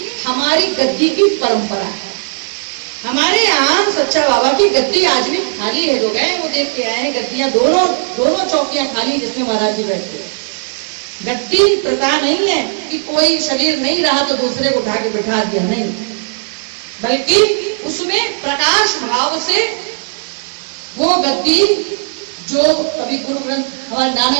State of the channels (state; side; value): silent; left; 69 dB below the other